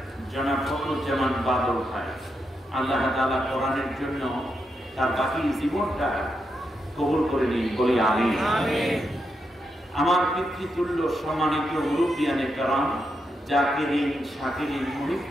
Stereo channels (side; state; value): both; normal; correlation 0.83